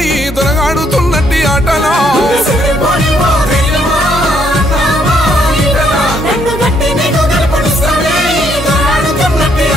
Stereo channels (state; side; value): normal; both; correlation 0.70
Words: ఈ దొరగాడుతున్నట్టి ఆటలా